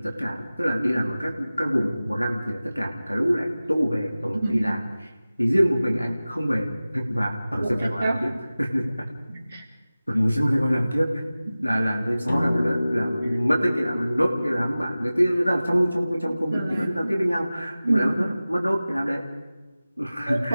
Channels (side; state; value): both; inverted; correlation -0.97